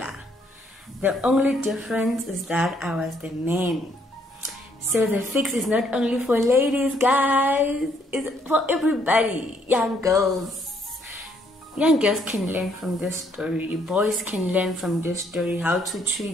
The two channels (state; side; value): normal; both; correlation 0.68